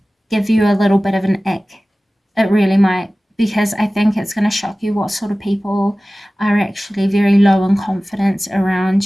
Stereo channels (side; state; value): both; normal; correlation 0.97